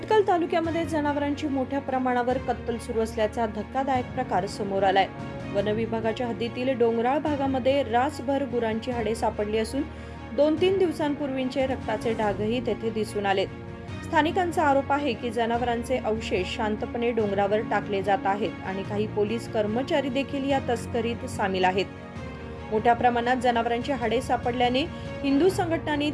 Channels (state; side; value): identical; both; correlation 1.00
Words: तालुक्यामध्ये जनावरांची मोठ्या प्रमाणावर कत्तल सुरू असल्याचा धक्कादायक प्रकार समोर आलाय। वन विभागाच्या हद्दीतील डोंगराळ भागामध्ये रासभर गुरांची हाडे सापडली असून 2-3 दिवसांपूर्वीचे रक्ताचे डागही तेथे दिसून आलेत। स्थानिकांचा आरोप आहे की जनावरांचे अवशेष शांतपणे डोंगरावर टाकले जात आहेत आणि काही पोलीस कर्मचारी देखील या तस्करीत सामील आहेत। मोठ्या प्रमाणात जनावरांची हाडे सापडल्याने हिंदू संघटनांनी